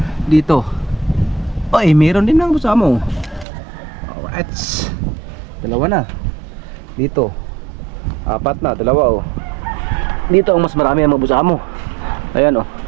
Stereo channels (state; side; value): drops out; left; at 3.5 s